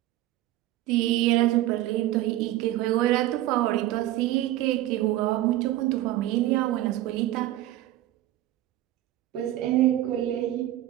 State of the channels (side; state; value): left; quieter; 14.8 dB